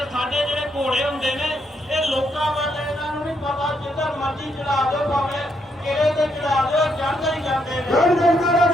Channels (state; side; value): normal; both; correlation 0.76